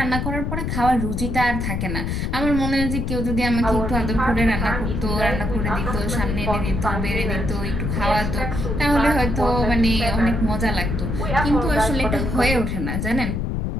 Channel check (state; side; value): noise; left; rumble, 2 dB below the sound